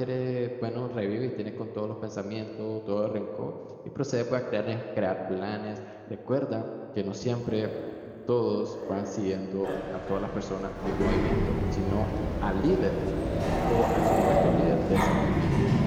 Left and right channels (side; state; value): both; identical; correlation 1.00